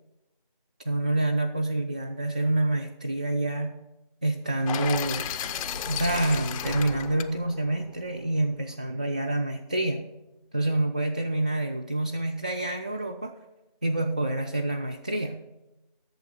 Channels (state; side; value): inverted; both; correlation -0.84